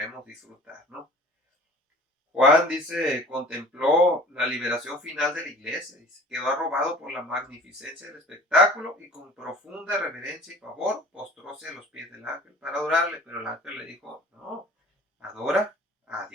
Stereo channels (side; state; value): both; normal; correlation 0.45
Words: disfrutar, ¿no? Juan dice, contempló la liberación final de la iglesia, dice, quedó arrobado por la magnificencia del espectáculo y con profunda reverencia y favor postróse a los pies del ángel para adorarle, pero el ángel le dijo, no, adora a